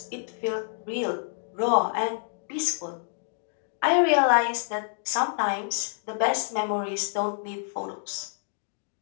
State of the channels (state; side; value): silent; right; digital silence